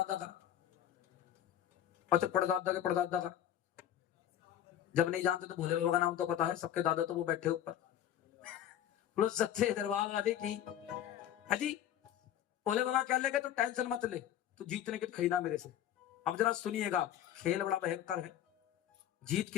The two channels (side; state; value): right; quieter; 10.9 dB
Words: का अच्छा पड़दादा के पड़दादा का जब नहीं जानते तो भोले बाबा का नाम तो पता है सबके दादा तो वो बैठे ऊपर बोलो सच्चे दरबार वाले की है जी। भोले बाबा कह लेंगे तो टेंशन मत ले तू जीतने की खरीदा मेरे से। अब जरा सुनिएगा खेल बड़ा भयंकर है। जीत